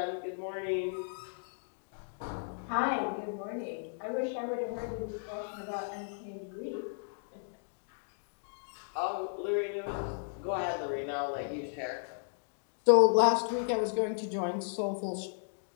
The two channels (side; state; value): right; silent; digital silence